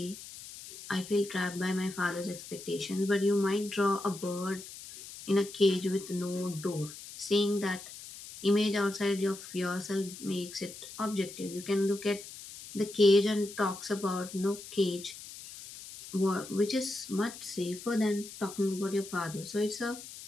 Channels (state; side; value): noise; left; hiss, 14 dB below the sound